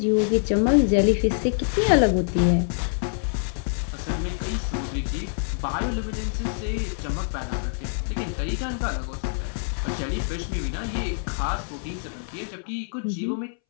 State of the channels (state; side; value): silent; right; 61 dB below the other